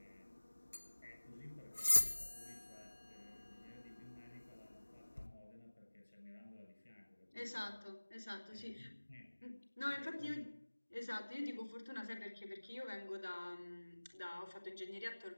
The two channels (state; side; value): inverted; both; correlation -1.00